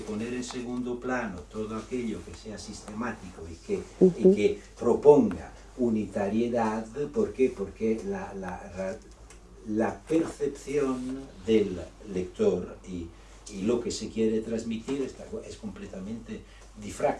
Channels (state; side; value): identical; both; correlation 1.00